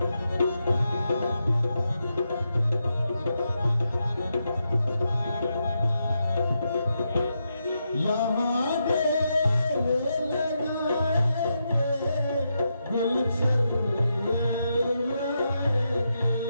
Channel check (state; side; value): inverted; both; correlation -0.84